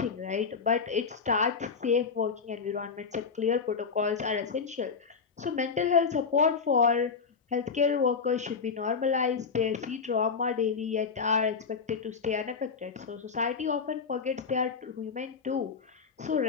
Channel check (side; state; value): right; quieter; 5.5 dB